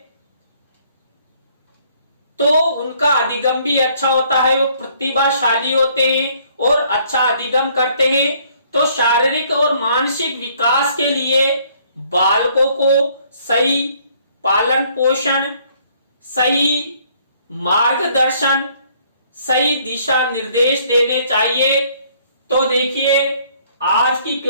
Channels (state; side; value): inverted; both; correlation -0.63